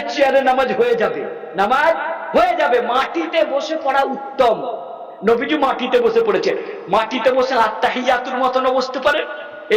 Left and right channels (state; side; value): identical; both; correlation 1.00